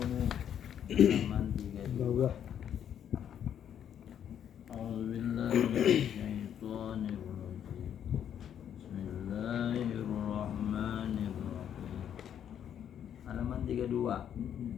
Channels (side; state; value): right; quieter; 9.4 dB